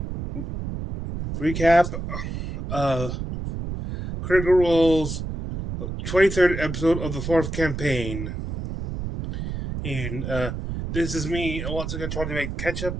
recap of Critical Role's 23rd episode of the 4th campaign. And this is me once again trying to make catch up.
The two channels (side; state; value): right; noise; rumble, 5 dB below the sound